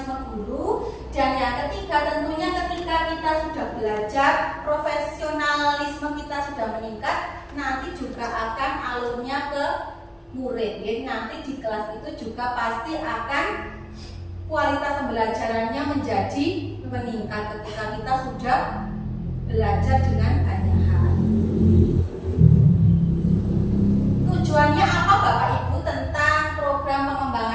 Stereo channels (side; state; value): both; identical; correlation 1.00